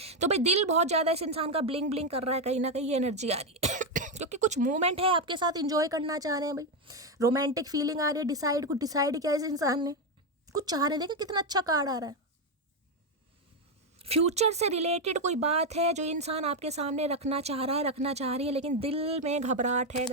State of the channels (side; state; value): both; normal; correlation 0.06